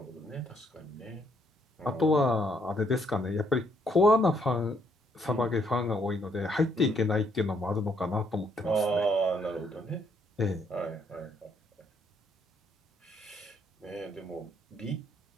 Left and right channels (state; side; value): normal; both; correlation 0.70